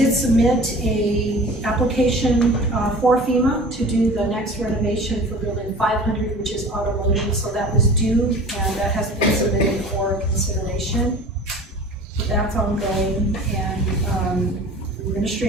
submit a application for FEMA to do the next renovation for building 500, which is automotive. So that was due, and that has been submitted for consideration. So that's ongoing, and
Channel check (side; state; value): both; normal; correlation 0.42